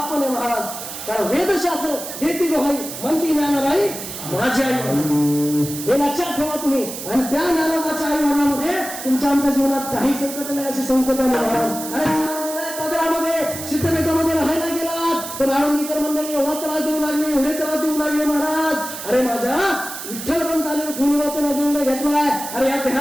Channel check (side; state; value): right; noise; hiss, 9 dB below the sound